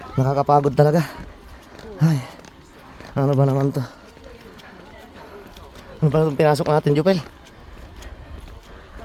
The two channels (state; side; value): identical; both; correlation 1.00